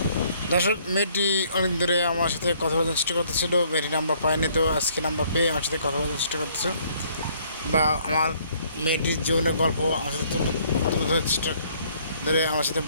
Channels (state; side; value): inverted; both; correlation -0.63